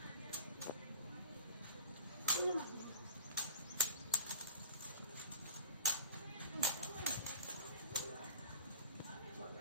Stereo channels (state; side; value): inverted; both; correlation -0.41